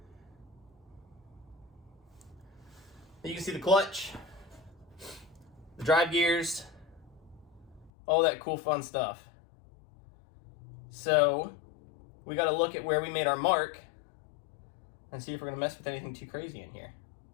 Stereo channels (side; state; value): right; drops out; at 7.9 s